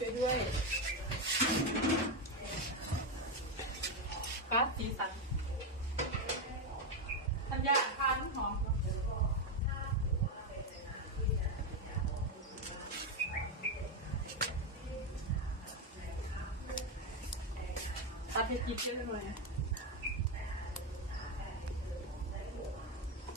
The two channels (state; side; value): normal; both; correlation 0.08